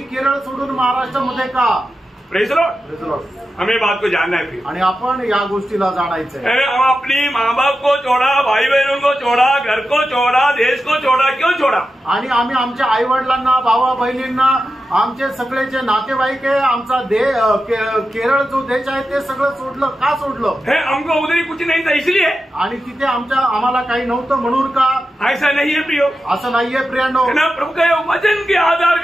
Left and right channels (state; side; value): normal; both; correlation 0.91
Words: केरळ सोडून महाराष्ट्रामध्ये का? Praise the Lord. हमें बात को जानना है. आणि आपण या गोष्टीला जाणायचं आहे. हम अपनी माँ बाप को छोड़ा, भाई बहनों को छोड़ा, घर को छोड़ा, देश को छोड़ा. क्यों छोड़ा? आणि आम्ही आमच्या आई वडिलांना, भावा बहिणींना, आमचे सगळे जे नातेवाईक आहे, आमचा केरळ जो देश आहे ते सगळं सोडलं. का सोडलं? हमको उधर कुछ नहीं था इसलिए. आणि तिथे आम्हाला काही नव्हतं म्हणून का? ऐसा नहीं है प्रियो. असं नाहीये प्रियांनो. प्रभु के वचन के आधार